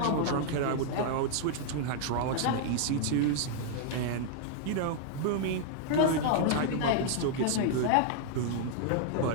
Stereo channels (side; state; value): both; different; correlation -0.01